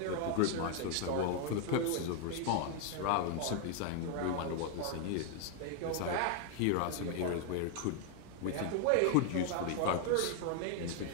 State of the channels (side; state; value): both; different; correlation 0.00